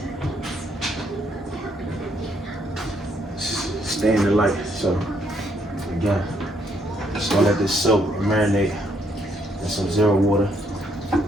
stay in the light. So again, just gonna let this soak and marinate in some zero water.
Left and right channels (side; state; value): both; normal; correlation 0.72